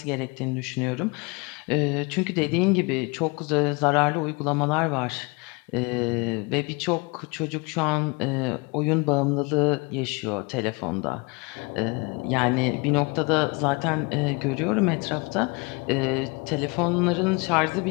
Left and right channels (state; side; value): quieter; right; 28.6 dB